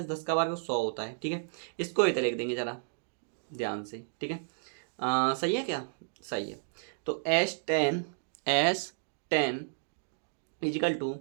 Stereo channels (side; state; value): left; silent; digital silence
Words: 10 का वर्ग 100 होता है। ठीक है, इसको इधर लिख देंगे जरा ध्यान से। ठीक है, सही है क्या, सही है। तो S10 इजिकल टू